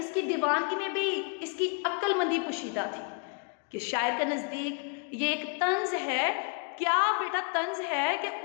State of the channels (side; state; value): right; quieter; 38.3 dB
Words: दीवानगी में भी इसकी अक्लमंदी पोशीदा थी कि शायर के नज़दीक ये एक तंज है। क्या बेटा तंज है कि